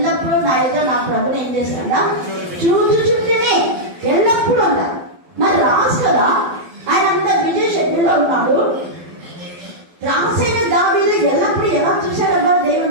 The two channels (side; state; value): left; late; 12 ms